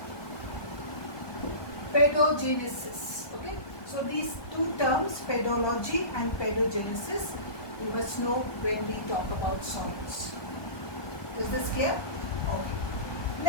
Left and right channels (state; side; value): late; right; 1.2 ms